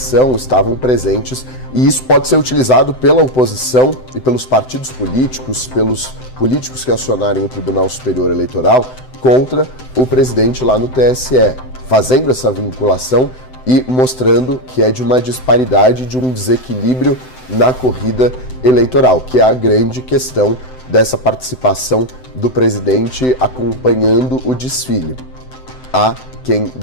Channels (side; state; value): right; late; 7.8 ms